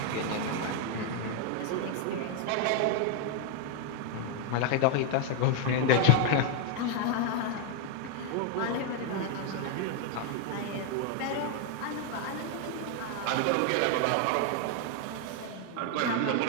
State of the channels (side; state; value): both; different; correlation 0.01